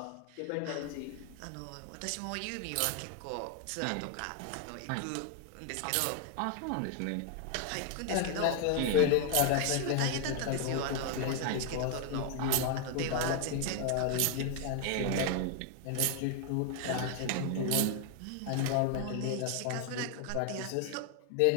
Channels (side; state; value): both; different; correlation 0.01